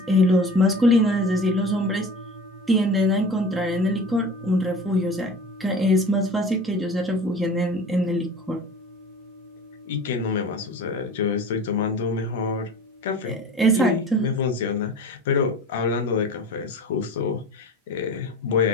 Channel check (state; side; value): normal; both; correlation 0.38